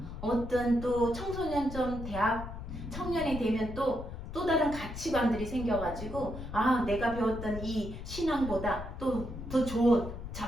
어떤 또 청소년점 대학 청년이 되면 또 다른 가치관들이 생겨가지고 내가 배웠던 이 신앙보다 또 더 좋은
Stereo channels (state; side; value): noise; left; rumble, 9 dB below the sound